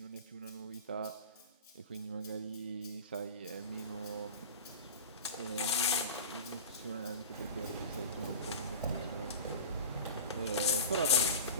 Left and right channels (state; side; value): inverted; both; correlation -0.31